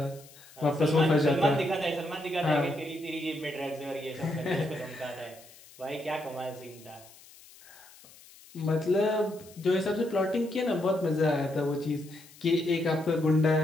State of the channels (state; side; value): noise; left; hiss, 22 dB below the sound